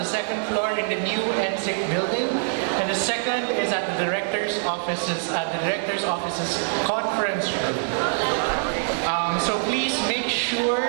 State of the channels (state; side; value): silent; left; digital silence